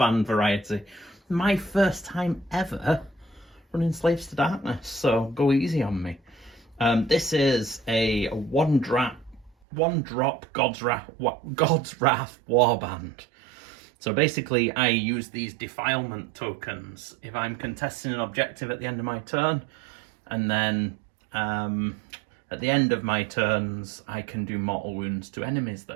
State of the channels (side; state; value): left; drops out; at 9.5 s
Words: variety. My first time ever running Slaves to Darkness, so go easy on me. This is a one drop Godswrath Warband. So basically I use these defilement tokens if I'm contesting an objective at the end of my turn, and then at the end of my turns, I can do mortal wounds to enemies